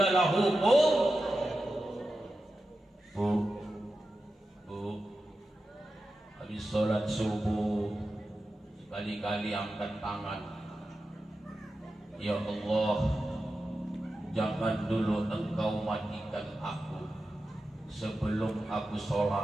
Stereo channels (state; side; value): normal; both; correlation 0.92